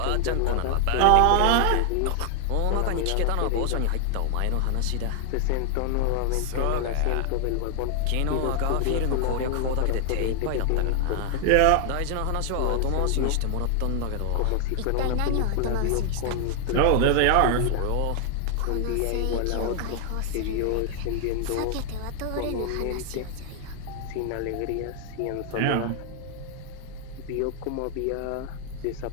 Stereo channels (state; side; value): different; both; correlation 0.00